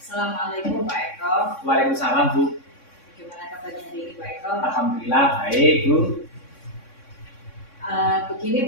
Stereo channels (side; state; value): right; late; 3.6 ms